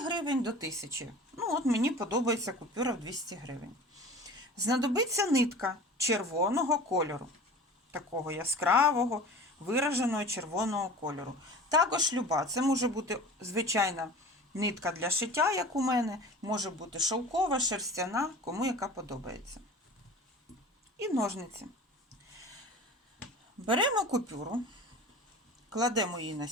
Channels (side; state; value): both; normal; correlation 0.39